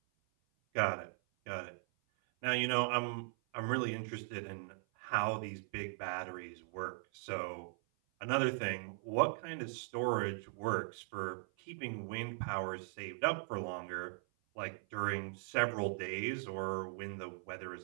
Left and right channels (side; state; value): left; silent; 52 dB below the other